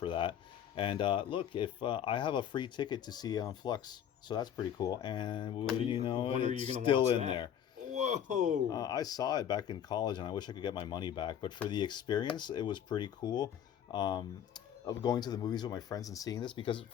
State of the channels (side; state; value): right; quieter; 9.4 dB